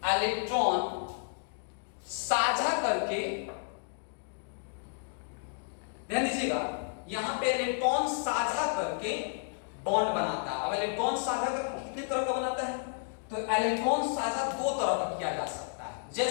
साझा करके, ध्यान दीजिएगा, यहां पे इलेक्ट्रॉन साझा करके बॉन्ड बनाता है। अब इलेक्ट्रॉन साझा करके कितने तरह का बनाता है, तो इलेक्ट्रॉन साझा 2 तरह का किया जा सकता है।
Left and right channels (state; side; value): silent; right; digital silence